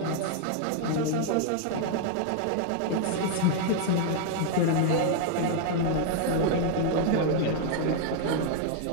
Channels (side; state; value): both; different; correlation 0.00